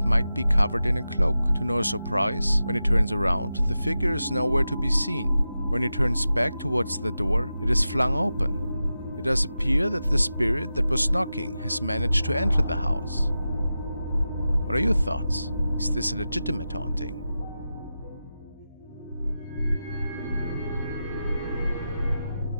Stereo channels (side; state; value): both; inverted; correlation -0.92